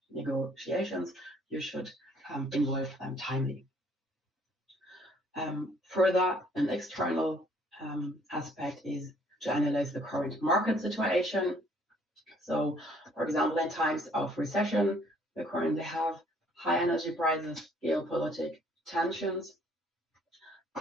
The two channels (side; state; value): both; normal; correlation 0.61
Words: negotiations? You should involve them timely. Further, an external aspect is to analyze the current market situation. So, for example, in times of recession, we currently have high energy prices, geopolitical tensions.